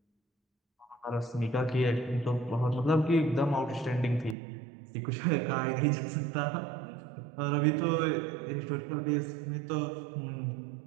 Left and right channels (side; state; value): left; drops out; at 4.4 s